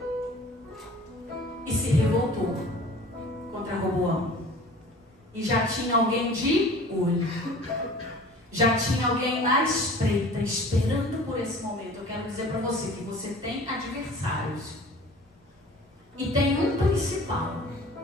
e se revoltou contra Roboão. E já tinha alguém de olho. Já tinha alguém na espreita, esperando por esse momento. Eu quero dizer para você que você tem adversários. E tem um principal,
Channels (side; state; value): both; normal; correlation 0.45